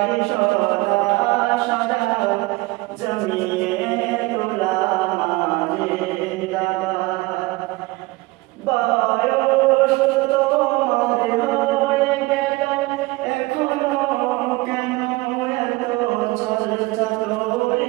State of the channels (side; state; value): left; quieter; 21.8 dB